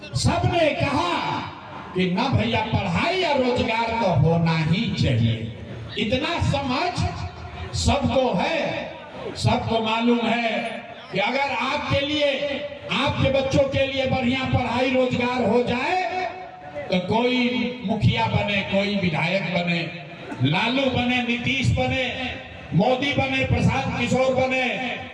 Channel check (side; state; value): both; identical; correlation 1.00